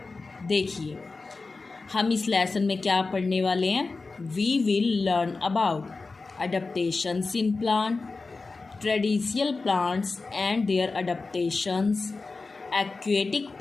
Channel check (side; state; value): right; quieter; 3.9 dB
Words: देखिए, हम इस लेसन में क्या पढ़ने वाले हैं। We will learn about adaptations in plant, traditional plants and their adaptations, aquatic